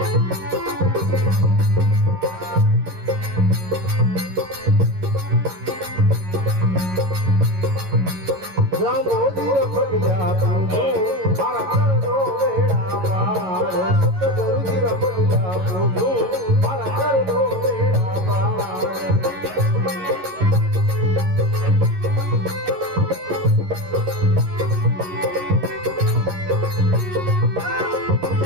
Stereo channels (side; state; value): left; late; 11 ms